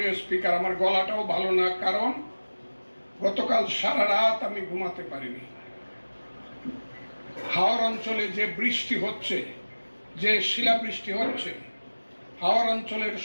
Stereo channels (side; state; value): both; inverted; correlation -1.00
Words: স্পিকার, আমার গলাটাও ভালো না, কারণ গতকাল সারা রাত আমি ঘুমাতে পারিনি। হাওর অঞ্চলে যে বৃষ্টি হচ্ছে, যে শিলাবৃষ্টি হচ্ছে, হাওর অঞ্চলের